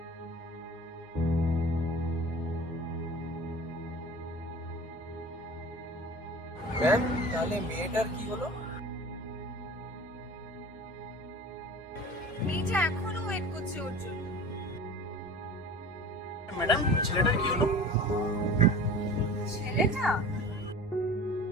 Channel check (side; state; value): both; normal; correlation 0.39